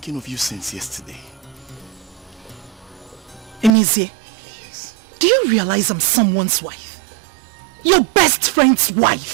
of you since yesterday. Emezi, Yes. do you realize I'm someone's wife? Your best friend's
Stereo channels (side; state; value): left; drops out; at 3.7 s